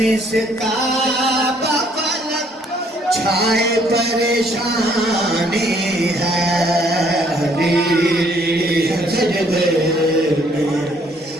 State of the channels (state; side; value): normal; both; correlation 0.64